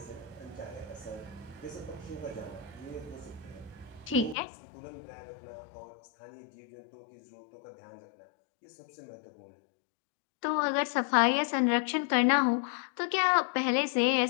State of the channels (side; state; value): right; drops out; at 4.4 s